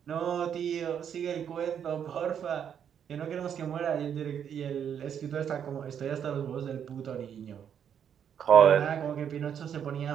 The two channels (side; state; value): left; quieter; 8.5 dB